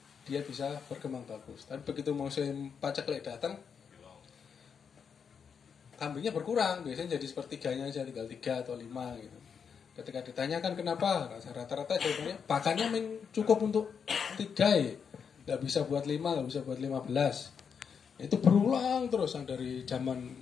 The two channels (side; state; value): right; quieter; 6.7 dB